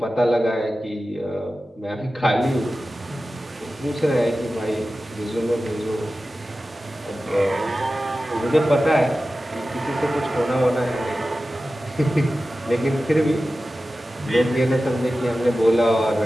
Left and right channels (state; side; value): normal; both; correlation 0.94